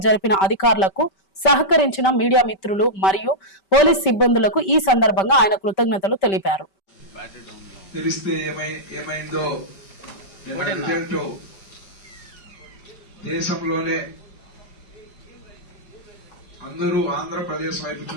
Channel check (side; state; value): right; late; 5.2 ms